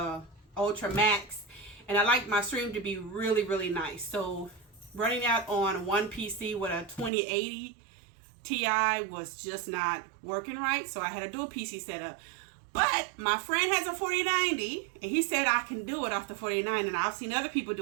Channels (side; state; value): left; drops out; at 7.1 s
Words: Ultra Max, and I like my stream to be really, really nice. So running out on one PC with a 2080 Ti was just not working right, so I had a dual PC setup. But my friend has a 4090, and he said I can do it off the 4090, and I've seen other people